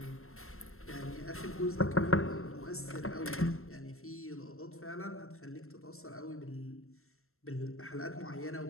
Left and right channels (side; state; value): right; late; 0.62 ms